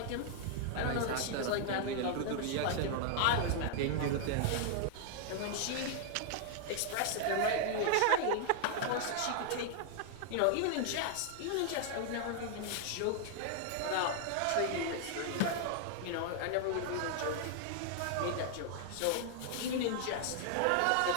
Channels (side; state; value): both; different; correlation 0.00